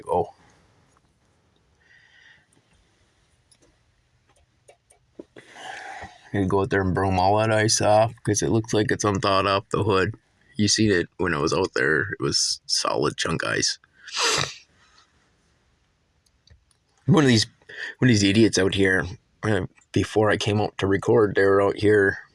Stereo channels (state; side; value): identical; both; correlation 1.00